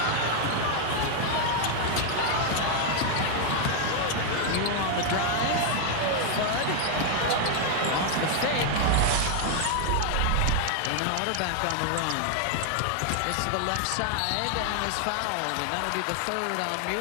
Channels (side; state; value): both; different; correlation 0.00